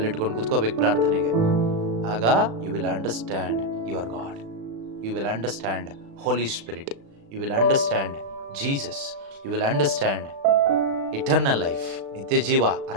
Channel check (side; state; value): left; late; 36 ms